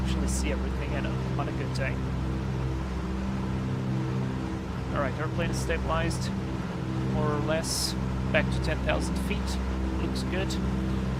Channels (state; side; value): identical; both; correlation 1.00